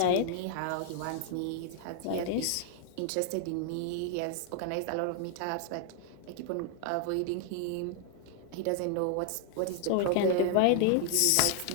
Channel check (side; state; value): both; different; correlation 0.00